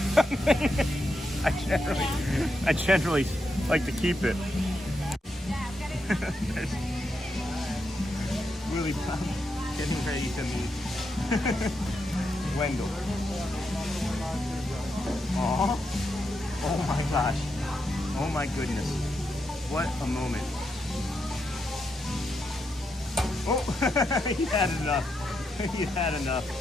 I generally like to keep it. Willie Bob getting ready to meet Wendell. Aww. Oh my gosh. Oh my goodness. What a moment. Oh, he had enough. He had enough.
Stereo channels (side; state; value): both; normal; correlation 0.83